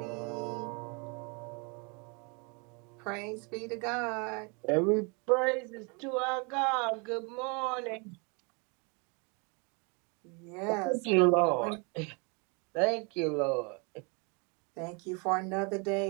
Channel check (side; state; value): left; quieter; 32.8 dB